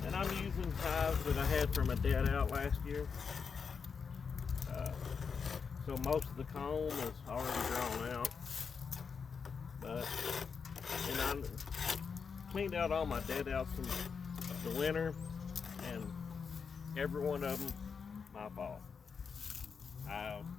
And I'm using hives that I had from a dead out last year. So most of the comb is already drawn out. And I cleaned out all my dead outs from the winter, and every one of them, my fault. I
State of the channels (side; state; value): right; quieter; 5.8 dB